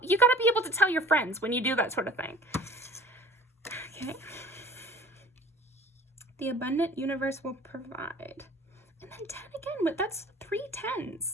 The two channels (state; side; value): normal; both; correlation 0.48